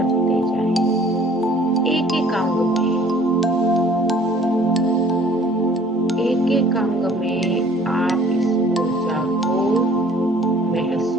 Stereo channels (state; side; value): normal; both; correlation 0.54